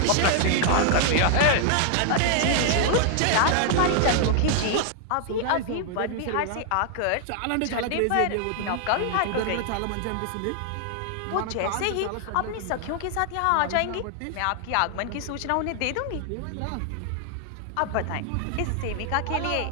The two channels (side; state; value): both; different; correlation 0.00